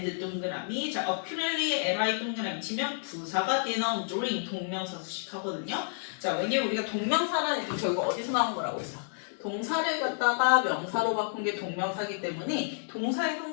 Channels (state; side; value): silent; right; digital silence